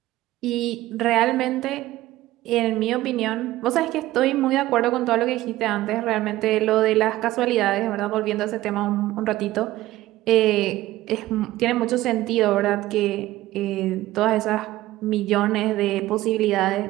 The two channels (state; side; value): quieter; left; 16.3 dB